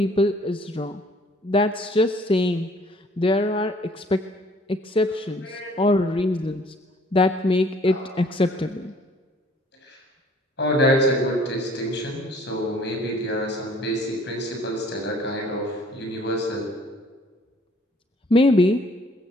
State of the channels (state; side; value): normal; both; correlation 0.57